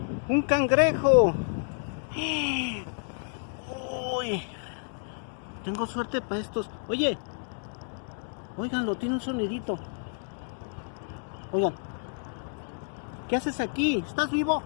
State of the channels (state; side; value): silent; right; 58 dB below the other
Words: Un cangrejo. Uy, tengo suerte para estos. Oye, óiganlo, tiene un sonidito. Oigan, ¿qué haces aquí? ¿Estás vivo?